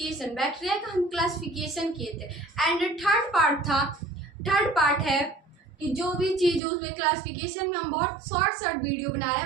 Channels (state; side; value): drops out; left; at 6.6 s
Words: बैक्टीरिया का हम क्लासिफिकेशन किए थे एंड थर्ड पार्ट है कि जो भी चीज़ उसमें क्लासिफिकेशन में हम बहुत शॉर्ट वीडियो बना रहे